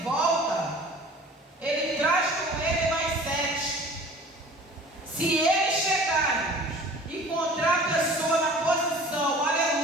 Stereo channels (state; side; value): normal; both; correlation 0.46